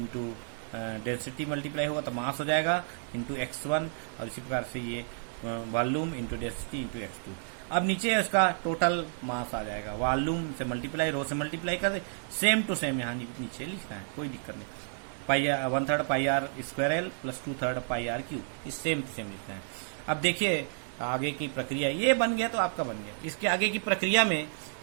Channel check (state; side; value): silent; left; digital silence